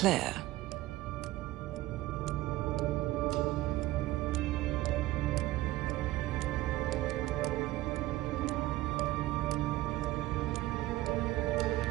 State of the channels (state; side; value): quieter; left; 17.1 dB